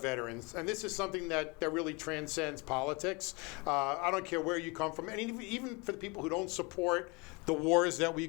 And this is something that really transcends politics. I don't care where you come from. And even for the people who don't support the wars that we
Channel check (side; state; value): right; quieter; 28.4 dB